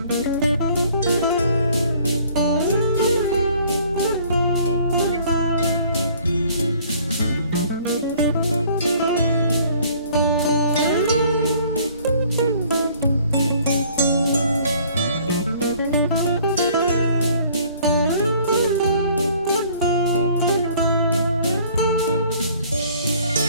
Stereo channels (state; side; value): inverted; both; correlation -0.56